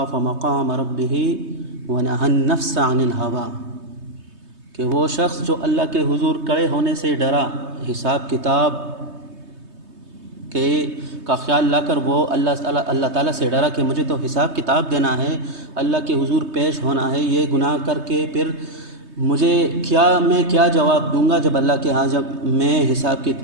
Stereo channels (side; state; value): left; late; 3.2 ms